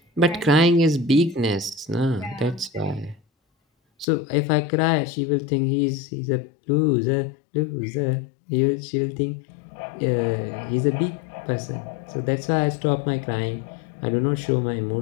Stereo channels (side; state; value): right; drops out; at 4.0 s